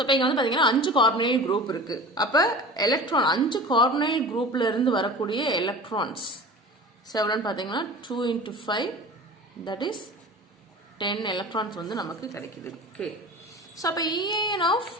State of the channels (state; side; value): normal; both; correlation 0.37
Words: இப்போ இங்கே வந்து பார்த்தீங்கன்னா 5 கார்பனைல் குரூப் இருக்கு. அப்போ எலக்ட்ரான் 5 கார்பனைல் குரூப்ல இருந்து வரக்கூடிய எலக்ட்ரான்ஸ் எவ்வளோன்னு பார்த்தீங்கன்னா 2 × 5, தட் இஸ் 10 எலக்ட்ரான்ஸ் வந்து நமக்கு கிடைக்குது. ஓகே, ஸோ அப்போ EAN ஆஃப்